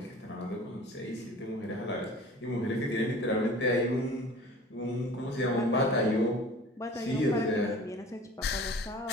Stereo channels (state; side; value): normal; both; correlation 0.43